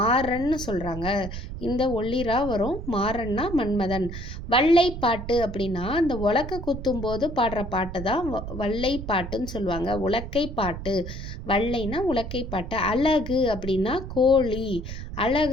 சொல்கிறாங்க. இந்த ஒல்லிரா வரும். மாறன்னா மன்மதன். வள்ளைப்பாட்டு அப்படின்னா இந்த உலக்க குத்தும் போது பாடுற பாட்டு தான் வள்ளைப்பாட்டுன்னு சொல்லுவாங்க. உலக்கை பாட்டு. வள்ளைனா உலக்கை பாட்டு. அழகு அப்படின்னா கோழி.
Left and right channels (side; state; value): right; noise; rumble, 8 dB below the sound